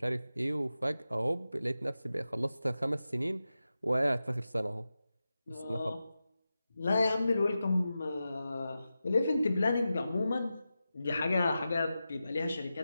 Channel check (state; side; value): inverted; both; correlation -0.92